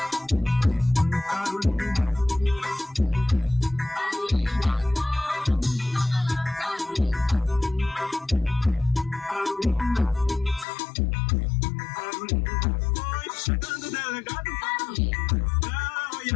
Foi chegando o delegado pra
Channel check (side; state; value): right; drops out; at 10.7 s